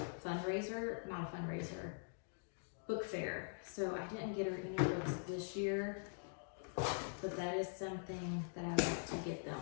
book fair. So I didn't get her any books this year, but that is something that I like to get them.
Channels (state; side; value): silent; right; digital silence